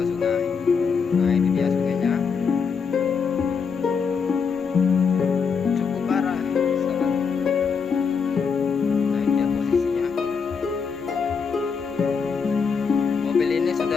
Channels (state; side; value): quieter; right; 5.8 dB